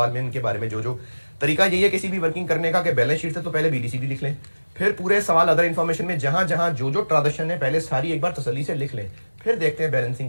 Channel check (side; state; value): both; inverted; correlation -1.00